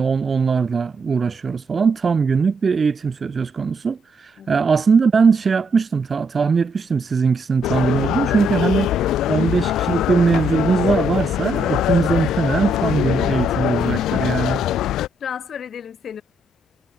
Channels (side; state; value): both; normal; correlation 0.75